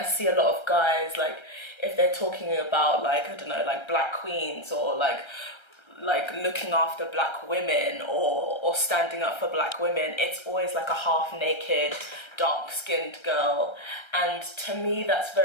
see a lot of guys, like, if they're talking about, like, I don't know, like black queens or like looking after black women or standing up for black women, it's always like a half-naked, dark-skinned girl. And to me, that's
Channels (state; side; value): late; right; 1.3 ms